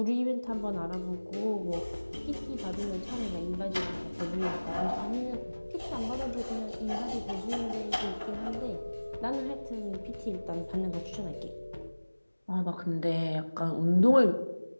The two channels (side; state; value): both; inverted; correlation -1.00